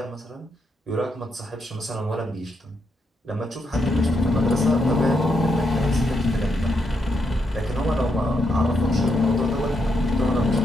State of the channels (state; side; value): normal; both; correlation 0.80